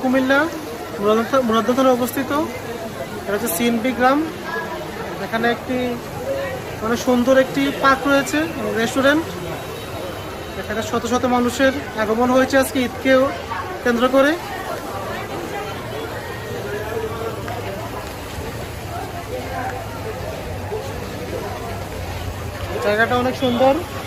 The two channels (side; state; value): both; identical; correlation 1.00